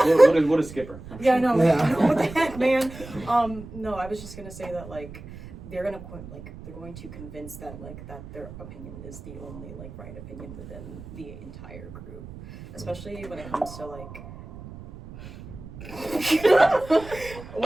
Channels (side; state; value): right; noise; rumble, 14 dB below the sound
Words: What is Skipper? Yeah, no. What the heck, man? No, I was just gonna say that, like, they're going to convince that, like, that their opinion is the only, like, right opinion within the entire group, especially when it comes to, like,